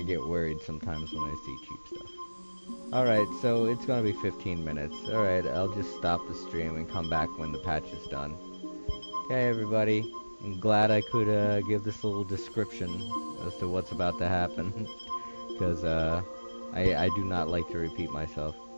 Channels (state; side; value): inverted; both; correlation -1.00